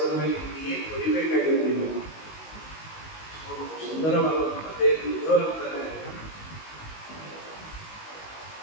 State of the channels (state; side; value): late; right; 19 ms